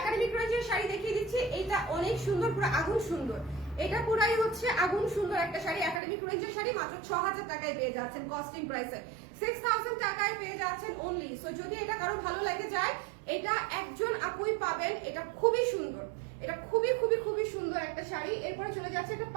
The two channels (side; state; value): left; drops out; at 6.0 s